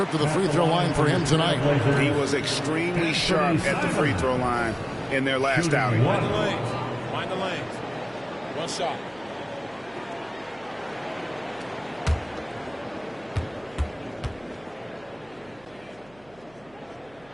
to the free throw line for him tonight. He was extremely sharp at the free throw line in their last outing. Mind the lanes. Mind the lanes. One shot.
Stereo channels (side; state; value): right; noise; hum, 27 dB below the sound